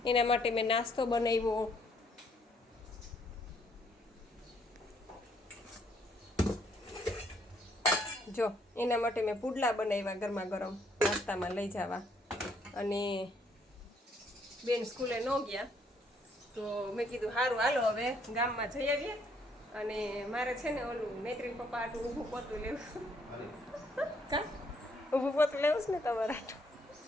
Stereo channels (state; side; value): normal; both; correlation 0.68